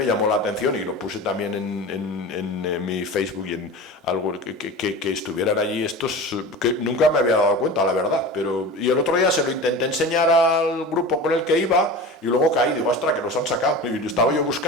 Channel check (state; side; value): normal; both; correlation 0.32